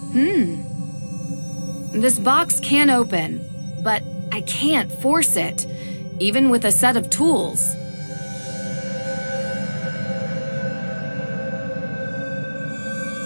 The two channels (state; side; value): inverted; both; correlation -1.00